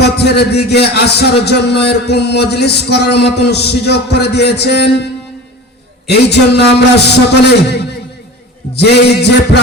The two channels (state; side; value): normal; both; correlation 0.35